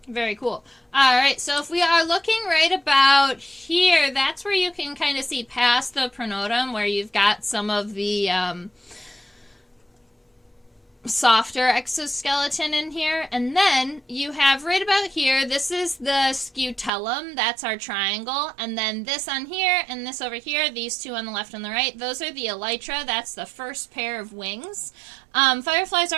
Very cool. All right, so if we are looking right about here, that's where you can kind of see past the pronotum, where you've got some of the softer exoskeleton in here. And then you have right about here, this is the scutellum, that's our triangle. And then this on here and this over here, these two on the left and the right, those are the elytra. That's the first pair of wings. Fireflies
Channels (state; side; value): drops out; left; at 16.9 s